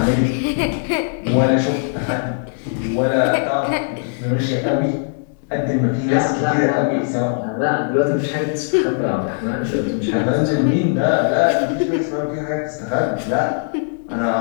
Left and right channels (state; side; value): silent; right; digital silence